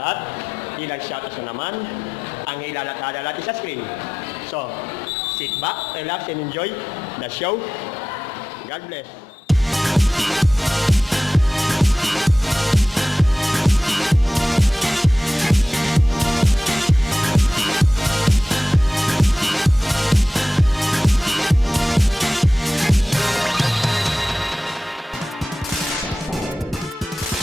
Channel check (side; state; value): both; normal; correlation 0.94